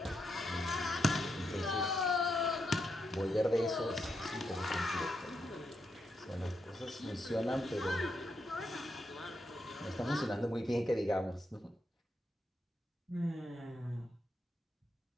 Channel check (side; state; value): both; normal; correlation 0.82